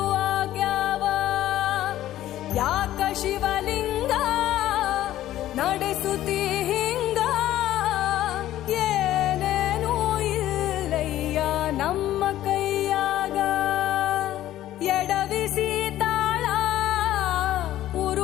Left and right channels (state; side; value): quieter; right; 13.5 dB